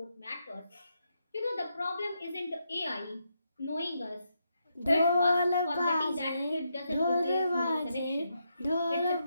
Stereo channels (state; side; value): inverted; both; correlation -0.81